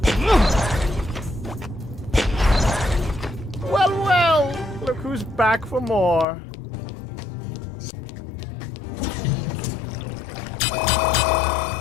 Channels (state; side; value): drops out; right; at 6.2 s